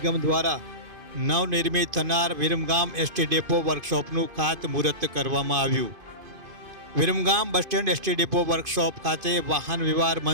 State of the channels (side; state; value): left; late; 2.5 ms